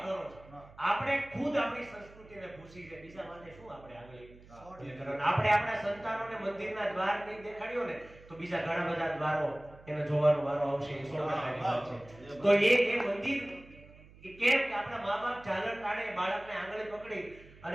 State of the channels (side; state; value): right; noise; hum, 22 dB below the sound